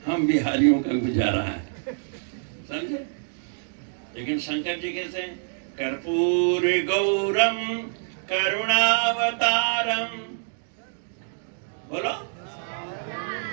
हम बिहारियों का गुजारा है, समझे। लेकिन शंकर जी कैसे? कर्पूर गौरम करुणावतारम, बोलो।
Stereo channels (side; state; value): left; silent; digital silence